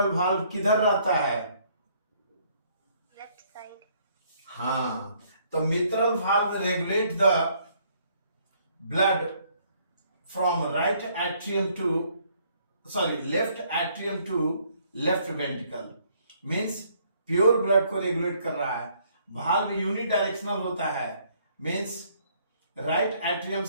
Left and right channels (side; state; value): both; inverted; correlation -0.66